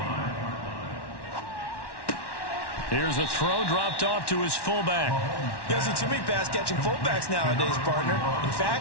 Here's a throw dropped off to his fullback. You don't see too many pass-catching fullbacks nowadays, partner. In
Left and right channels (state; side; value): late; right; 1.1 ms